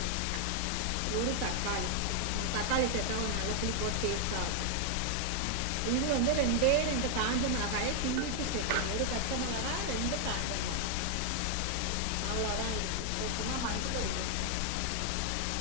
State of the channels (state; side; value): different; both; correlation 0.00